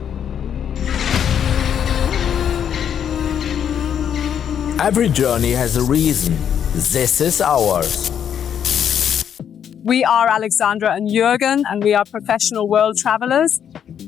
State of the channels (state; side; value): quieter; right; 8.7 dB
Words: Every journey has a reason. This is ours. We are Alexandra and Jürgen, and we are professional world travelers.